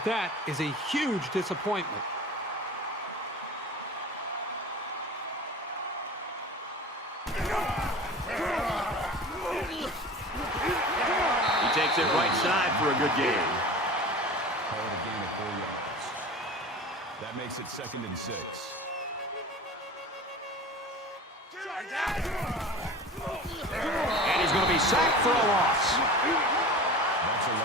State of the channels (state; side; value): normal; both; correlation 0.36